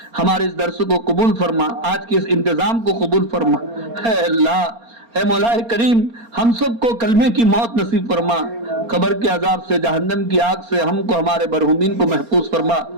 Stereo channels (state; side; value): late; left; 4.3 ms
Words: ہمارے اس درس کو قبول فرما، آج کے اس انتظام کو قبول فرما. اے اللہ اے مولا کریم ہم سب کو کلمے کی موت نصیب فرما. قبر کے عذاب سے، جہنم کی آگ سے ہم کو ہمارے مرحومین کو محفوظ فرما.